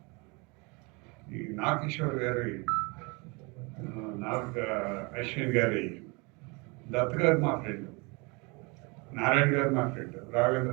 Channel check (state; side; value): quieter; left; 29.0 dB